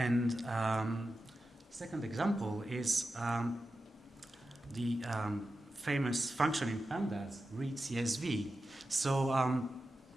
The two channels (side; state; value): both; normal; correlation 0.92